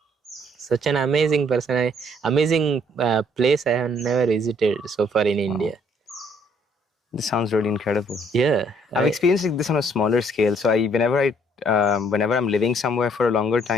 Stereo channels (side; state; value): both; normal; correlation 0.64